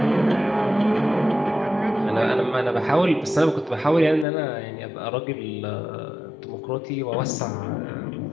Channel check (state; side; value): drops out; right; at 4.2 s